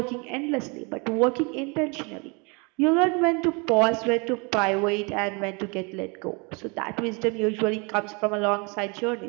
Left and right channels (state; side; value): quieter; left; 30.9 dB